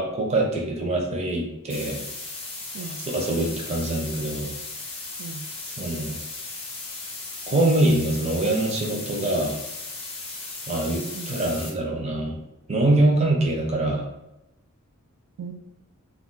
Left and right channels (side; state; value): both; normal; correlation 0.51